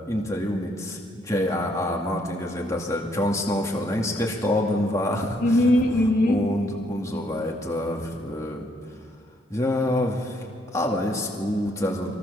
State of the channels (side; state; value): both; normal; correlation 0.70